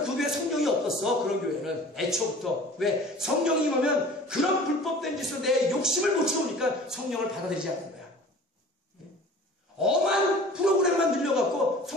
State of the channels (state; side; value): normal; both; correlation 0.44